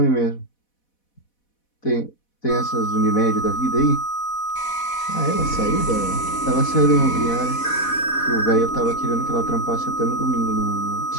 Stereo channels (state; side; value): late; right; 4.1 ms